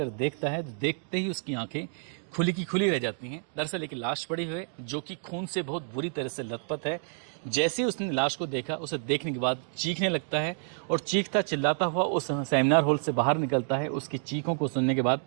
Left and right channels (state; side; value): silent; left; 58 dB below the other